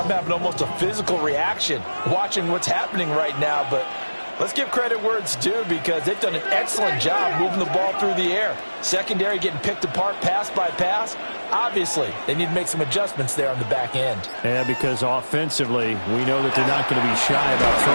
having almost a physical reaction watching what's happening right now. But let's give credit where it's due because they've done an excellent job moving the ball through the air. Secondary getting picked apart pass by pass. Obviously, they need to make some adjustments there on the back end. Yeah, because offensively, we know that they're not going to be shy about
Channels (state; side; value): inverted; both; correlation -1.00